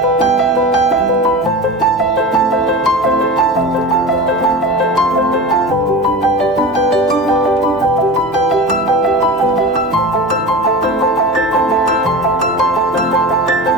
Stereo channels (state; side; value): normal; both; correlation 0.30